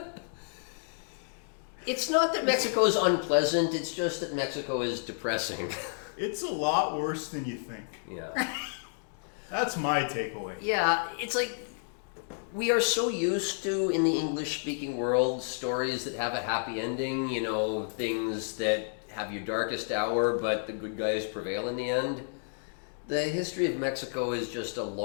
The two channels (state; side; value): silent; right; digital silence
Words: It's not that Mexico is unpleasant, it's just that Mexico is depressing. It's a lot worse than you think. Yeah. That's my takeaway. Yeah, it's like we are so used to, in the English-speaking world, stories that have a happy ending, things that have your darkest hour, but the good guys prevail in the end. The history of Mexico is just a